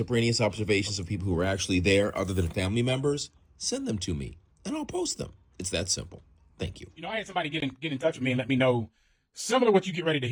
observations of people who were actually there other than family members, send them to me, and I'll post them. It's that simple. Thank you. You know, I had somebody get in touch with me and let me know similar to what you get ready to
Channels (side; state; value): both; identical; correlation 1.00